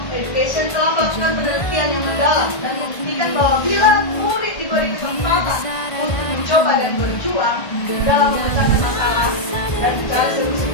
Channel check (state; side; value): late; right; 1.5 ms